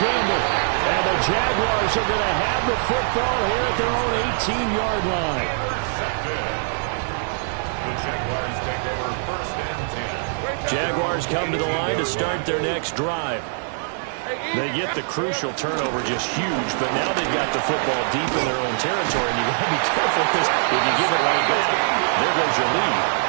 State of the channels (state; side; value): silent; left; 64 dB below the other